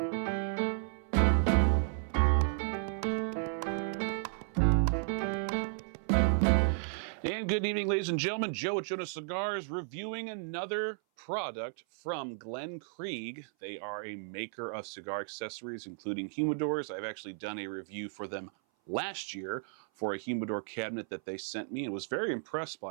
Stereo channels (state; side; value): silent; left; 55 dB below the other